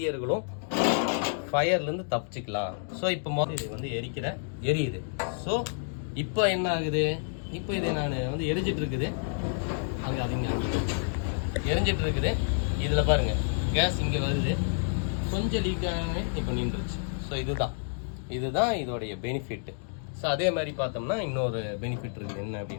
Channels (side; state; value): right; silent; digital silence